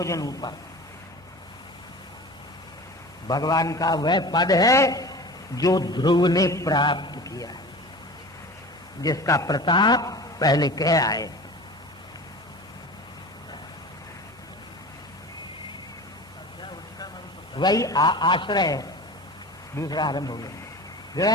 ऊपर भगवान का वह पद है जो ध्रुव ने प्राप्त किया, जिसका प्रताप पहले कह आए। वही आश्रय दूसरा आरंभ हो गया।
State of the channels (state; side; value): normal; both; correlation 0.36